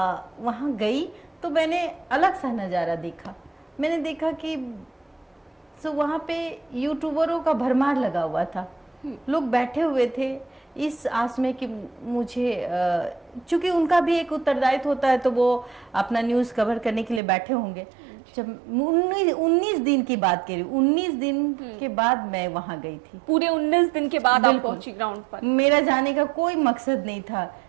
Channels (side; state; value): left; drops out; at 17.2 s